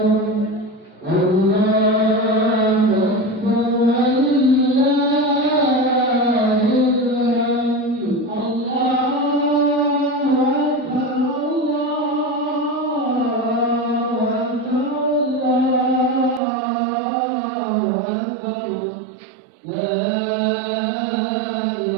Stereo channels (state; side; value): drops out; left; at 16.4 s